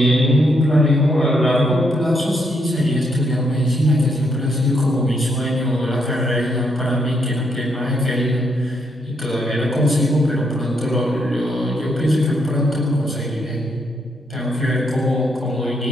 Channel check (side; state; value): both; normal; correlation 0.76